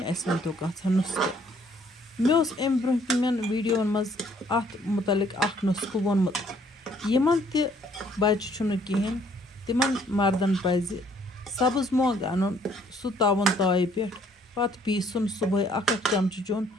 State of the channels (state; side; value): normal; both; correlation 0.63